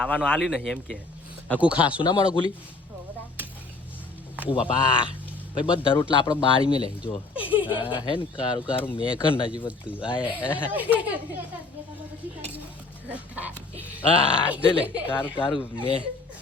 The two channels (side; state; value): right; quieter; 3.6 dB